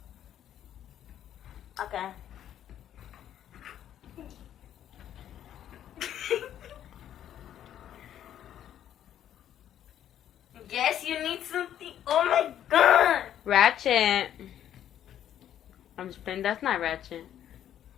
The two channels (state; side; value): quieter; right; 10.7 dB